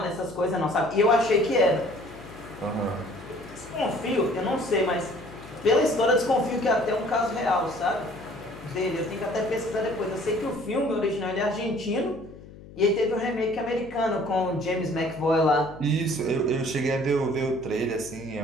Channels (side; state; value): left; noise; hum, 18 dB below the sound